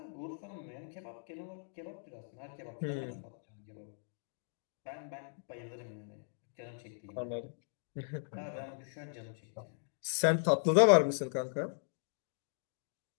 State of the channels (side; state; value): right; silent; digital silence